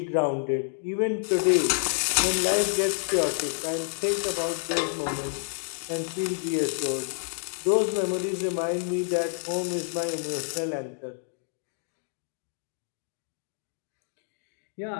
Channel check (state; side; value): silent; right; digital silence